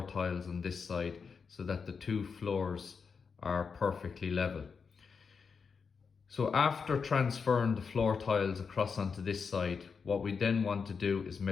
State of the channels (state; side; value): quieter; right; 5.6 dB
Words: tiles on this side so that the two floors are perfectly level. So after transferring the floor tiles across onto this side, what we then want to do is